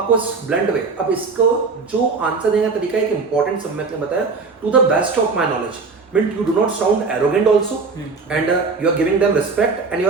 ब्लंड वे। अब इसको जो आंसर देने का तरीका है, एक इंपॉर्टेंट सब मैंने बताया, to the best of my knowledge, meant you do not sound arrogant also, and you are giving them respect and you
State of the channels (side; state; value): left; quieter; 4.4 dB